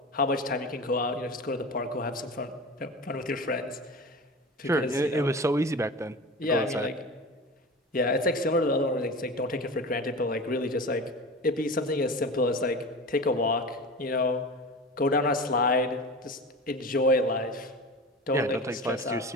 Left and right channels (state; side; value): normal; both; correlation 0.31